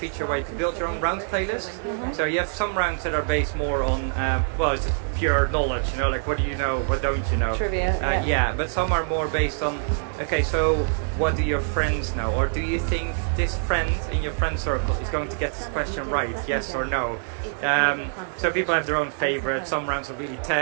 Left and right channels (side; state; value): left; silent; 61 dB below the other